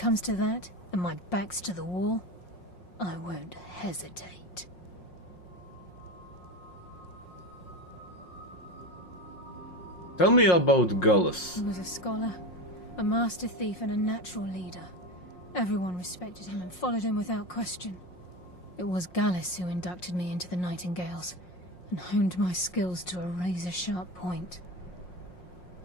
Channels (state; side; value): late; right; 5.6 ms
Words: to that, and my back's to the wall, I won't hesitate. Tell me about Gallus. He was a scholar, a master thief, and a natural leader. Everyone respected him and followed him without question. It was Gallus who inducted me into the Nightingales, and honed my skills to a razor-sharp point.